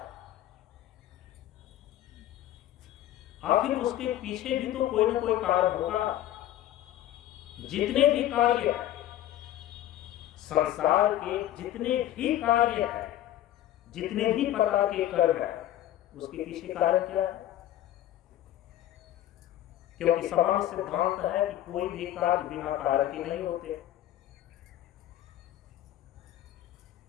आखिर उसके पीछे भी तो कोई ना कोई कारण होगा। जितने भी कार्य हैं, संसार के जितने भी कार्य हैं, जितने भी प्रकार के कर्म हैं, उसके पीछे कारण क्या है? क्योंकि सामान्य सिद्धांत है कि कोई भी कार्य बिना कारण के नहीं होते।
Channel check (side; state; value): right; quieter; 13.1 dB